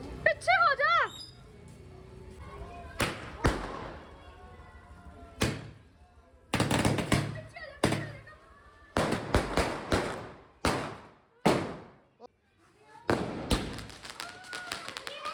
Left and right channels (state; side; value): identical; both; correlation 1.00